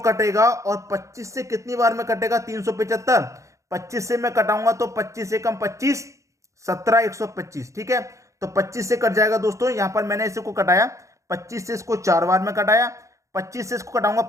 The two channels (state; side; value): late; left; 0.15 ms